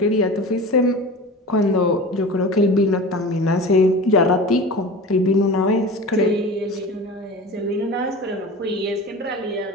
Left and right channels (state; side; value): normal; both; correlation 0.34